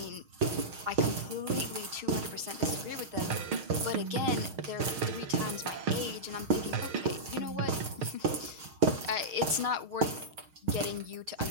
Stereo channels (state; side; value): late; left; 6.4 ms